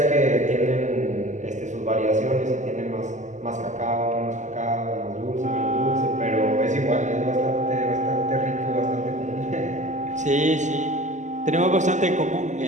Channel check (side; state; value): left; late; 0.35 ms